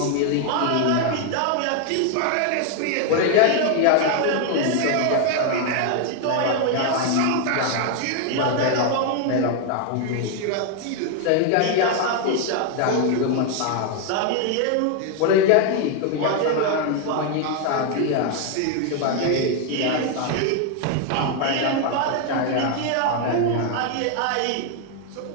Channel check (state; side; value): different; both; correlation 0.01